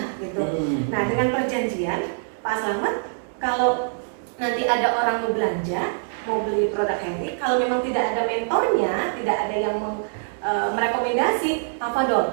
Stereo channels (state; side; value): silent; left; digital silence